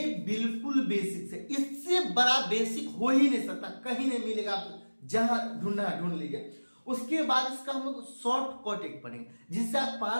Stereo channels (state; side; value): inverted; both; correlation -1.00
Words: बिल्कुल बेसिक है, इससे बड़ा बेसिक हो ही नहीं सकता, कहीं नहीं मिलेगा। आप जहां ढूंढना ढूंढ लीजिए। उसके बाद इसका हम लोग शॉर्ट कट एक पढ़ेंगे जिससे आप